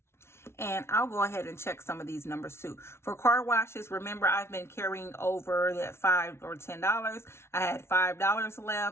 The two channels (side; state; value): right; late; 0.12 ms